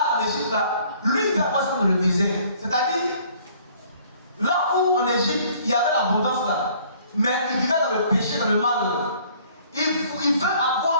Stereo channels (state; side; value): inverted; both; correlation -0.57